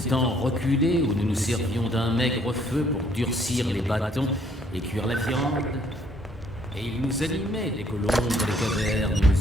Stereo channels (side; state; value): both; normal; correlation 0.65